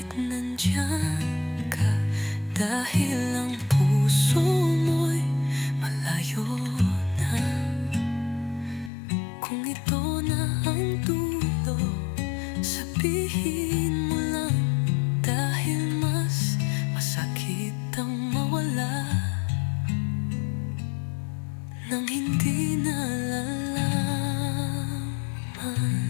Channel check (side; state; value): right; drops out; at 8.9 s